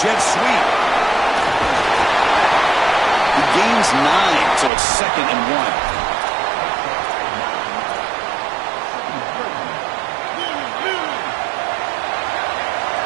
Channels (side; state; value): left; drops out; at 4.7 s